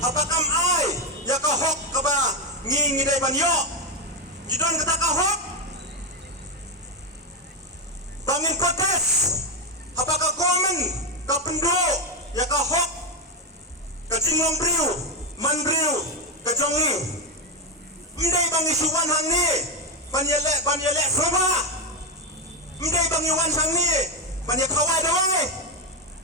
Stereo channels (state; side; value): normal; both; correlation 0.07